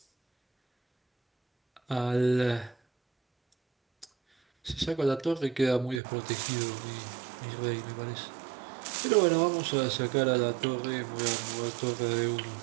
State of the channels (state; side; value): drops out; left; at 6.0 s